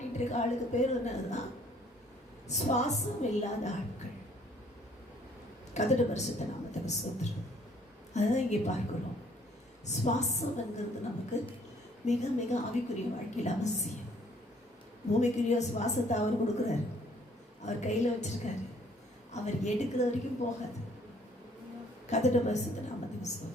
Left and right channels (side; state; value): both; normal; correlation 0.61